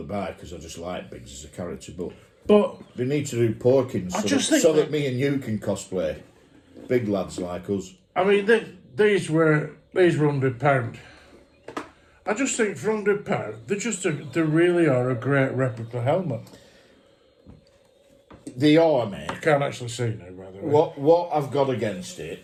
buy because I just like Biggs as a character, But they need to do Porkins so that me and you can cosplay big lads like us. I mean, these were £100. I just think for £100, they really are a great replica helmet. They are, mate. I can't actually see now, by the way. What I've got against it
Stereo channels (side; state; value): both; identical; correlation 1.00